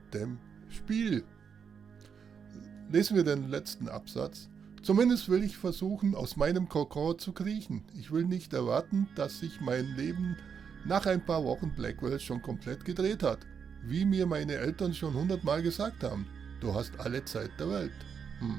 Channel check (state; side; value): quieter; left; 6.8 dB